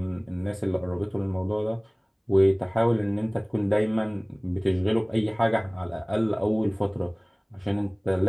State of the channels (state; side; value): identical; both; correlation 1.00